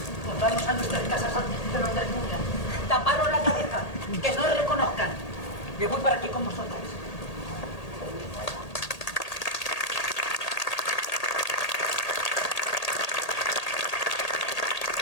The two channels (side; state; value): right; late; 1.8 ms